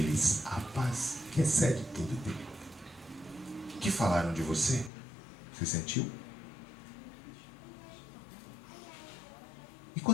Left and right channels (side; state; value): right; drops out; at 4.9 s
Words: a paz que excede todo entendimento. O que falaram de você? Você sentiu? E